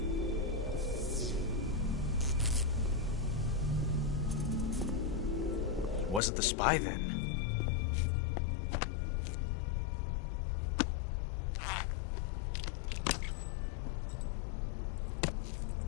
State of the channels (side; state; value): right; drops out; at 6.2 s